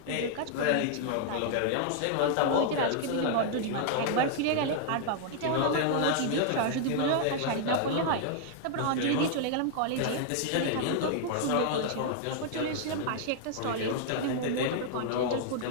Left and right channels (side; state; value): both; different; correlation -0.01